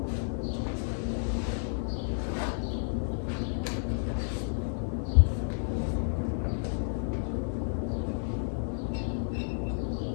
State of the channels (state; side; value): silent; right; digital silence